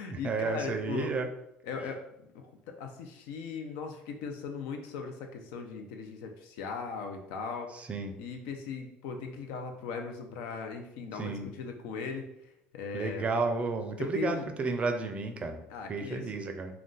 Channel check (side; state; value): both; normal; correlation 0.51